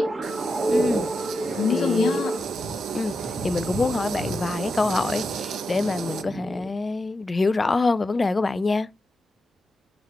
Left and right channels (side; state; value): both; normal; correlation 0.88